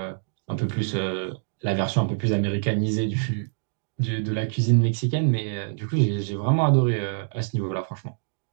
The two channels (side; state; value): left; silent; digital silence